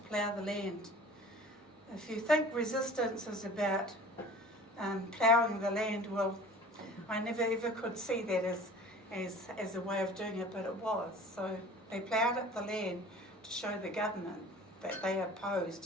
the land. If you think resistance is about ploughing the land, well, I never ever could see that as a way of doing it, but it was. So they ploughed up the land to show the government that they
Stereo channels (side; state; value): both; normal; correlation 0.44